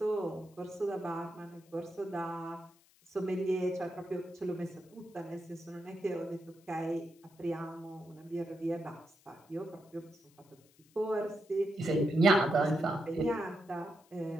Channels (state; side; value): noise; left; hiss, 30 dB below the sound